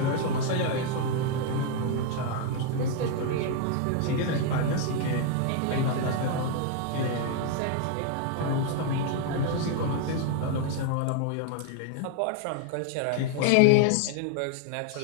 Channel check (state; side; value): different; both; correlation 0.00